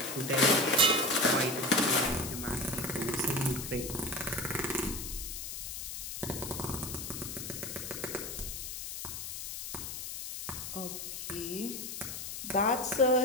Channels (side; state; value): left; noise; hiss, 7 dB below the sound